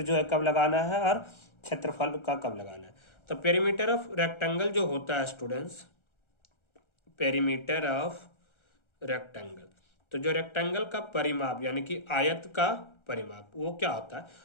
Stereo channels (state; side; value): late; right; 1.3 ms